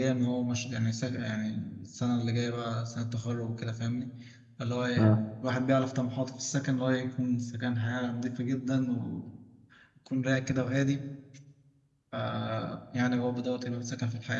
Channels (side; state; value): both; identical; correlation 1.00